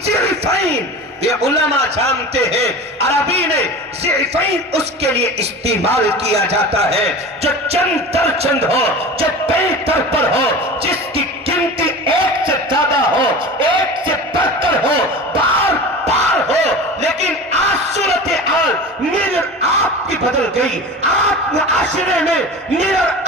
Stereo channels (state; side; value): normal; both; correlation 0.34